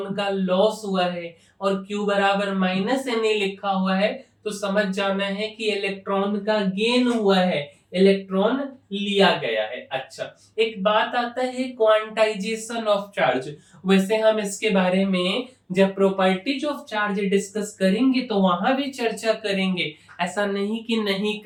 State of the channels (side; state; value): both; identical; correlation 1.00